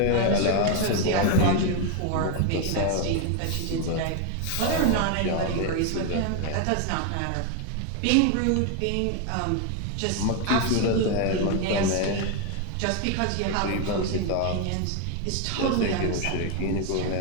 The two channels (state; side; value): different; both; correlation 0.01